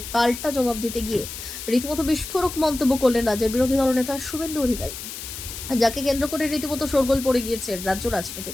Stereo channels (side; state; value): left; noise; hiss, 9 dB below the sound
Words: পাল্টা জবাব দিতে গিয়ে রীতিমতো বিস্ফোরক মন্তব্য করলেন রাজ্যের বিরোধী দলনেতা শুভেন্দু অধিকারী, যাকে কেন্দ্র করে রীতিমতো শোরগোল পড়ে গিয়েছে রাজ্য রাজনীতি।